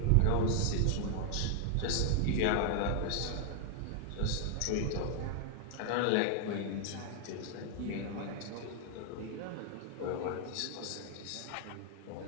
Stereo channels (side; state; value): both; different; correlation 0.00